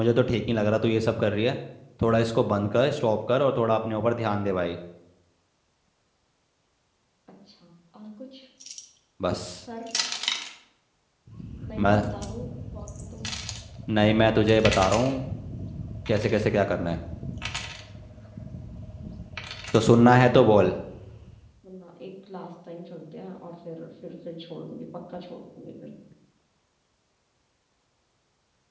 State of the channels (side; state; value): both; identical; correlation 1.00